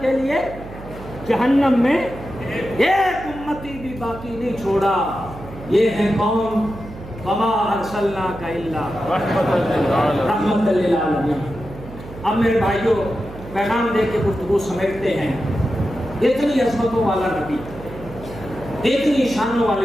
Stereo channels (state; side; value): noise; right; hum, 15 dB below the sound